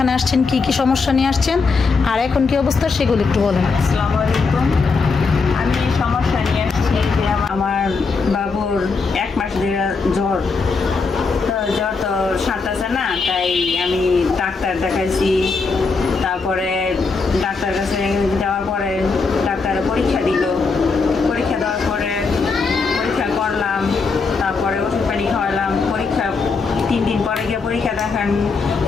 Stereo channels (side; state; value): right; quieter; 4.5 dB